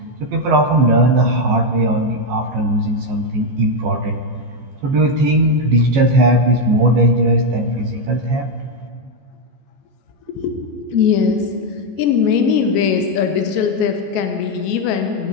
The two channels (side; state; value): left; late; 15 ms